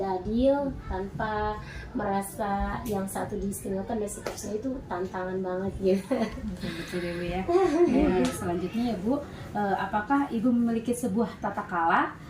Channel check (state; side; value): identical; both; correlation 1.00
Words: adil tanpa merasa yang satu diistimewakan dan seterusnya, itu tantangan banget gitu. Betul ya Bu ya. Selanjutnya ya Bu, apakah Ibu memiliki sebuah tata kala